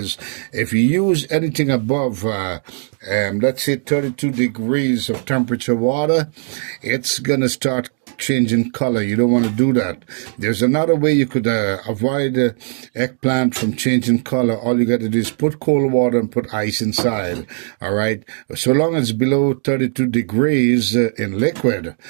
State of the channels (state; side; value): silent; left; 56 dB below the other